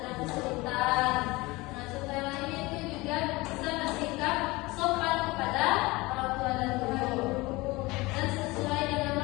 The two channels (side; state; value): right; quieter; 22.2 dB